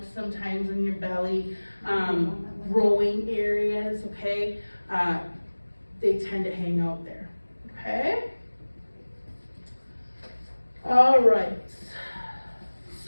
sometimes on your belly, growing areas, okay? They tend to hang out there, okay? All right.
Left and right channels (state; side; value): inverted; both; correlation -1.00